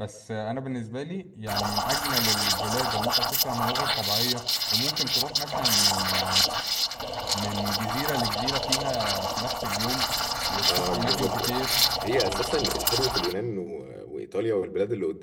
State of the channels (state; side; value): identical; both; correlation 1.00